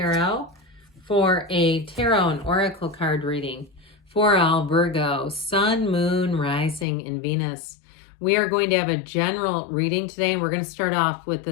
for a tarot and oracle card reading for all Virgo, Sun, Moon, Rising, and Venus. We are going to have a general reading today, and we're going to start off with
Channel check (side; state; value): right; drops out; at 6.9 s